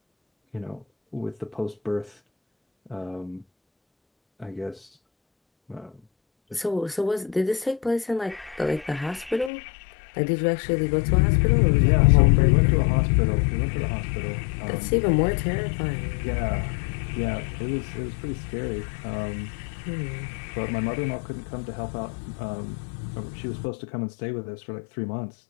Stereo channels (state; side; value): drops out; right; at 9.5 s